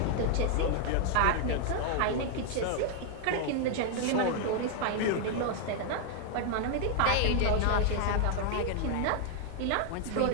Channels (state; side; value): different; both; correlation 0.00